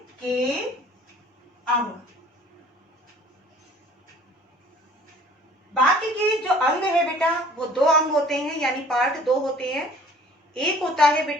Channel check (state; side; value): normal; both; correlation 0.52